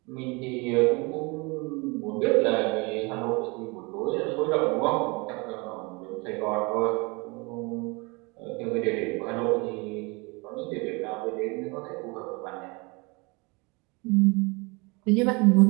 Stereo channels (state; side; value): quieter; left; 27.7 dB